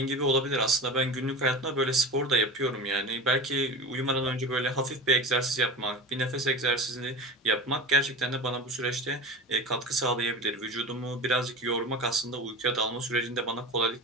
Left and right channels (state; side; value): normal; both; correlation 0.31